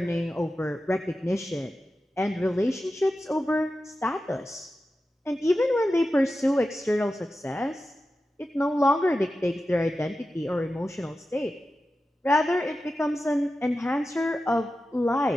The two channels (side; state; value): both; normal; correlation 0.93